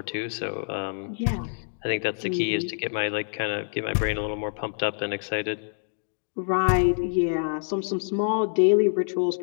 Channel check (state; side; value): silent; right; digital silence